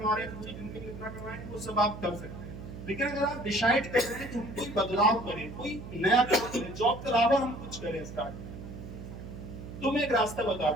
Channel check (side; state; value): right; noise; hum, 11 dB below the sound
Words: रहे हैं तो पूरी जिंदगी में कितना कमाएंगे वो सब आप कर सकते हैं। लेकिन अगर आप डिसाइड कर रहे हैं कि हम कोई बदलाव करें, कोई नया काम करें, जॉब के अलावा हम कुछ करें स्टार्ट, तो मैं एक रास्ता बता